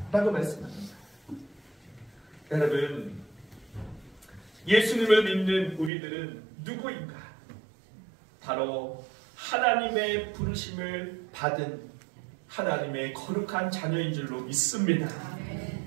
라고 말씀합니다. 여러분 예수님을 믿는 우리들은 누구인가? 바로 하나님의 부르심을 받은 하나님의 거룩한 자녀인 줄로 믿습니다.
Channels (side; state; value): left; drops out; at 5.9 s